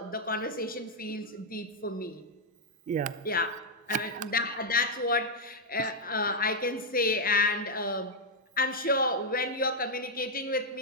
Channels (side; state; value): both; normal; correlation -0.02